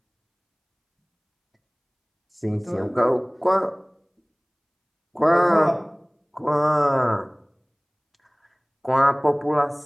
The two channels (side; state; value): both; identical; correlation 1.00